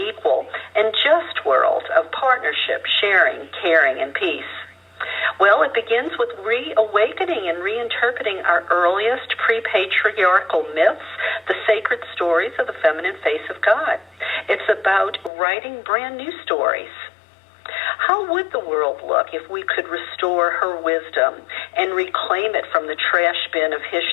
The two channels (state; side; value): drops out; right; at 15.3 s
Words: and just world of partnership, sharing, caring, and peace? Well, it begins with reawakening and reinterpreting our earliest pre-patriarchal myths, the sacred stories of the feminine face of God. It's about writing brand new stories. How would the world look if we could restore her wisdom and reclaim it from the trash bin of